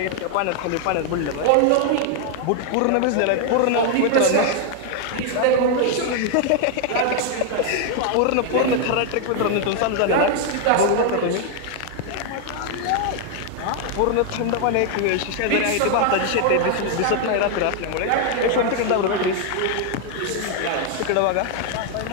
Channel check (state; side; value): different; both; correlation 0.00